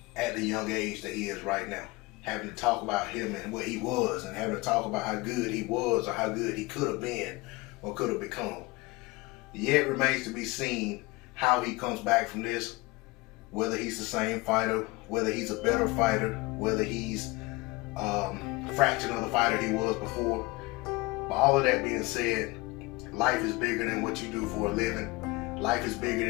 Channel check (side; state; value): right; quieter; 23.2 dB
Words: at the young age that he is right now. Having to talk about him and what he was, and having to talk about how good he was or how good he could have been or could have become. Yet remains to be seen how he comes back from this, whether he's the same fighter, whether he's a better fighter, whether he's a fraction of the fighter he was before. But all of that being said, life is bigger than what you do for a living. Life is bigger